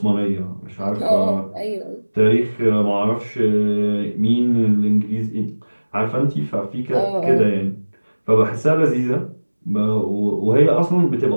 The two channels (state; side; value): inverted; both; correlation -1.00